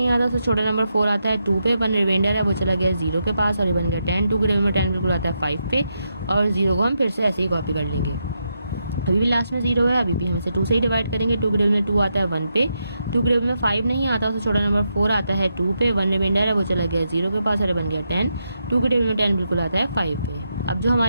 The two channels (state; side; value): inverted; both; correlation -0.83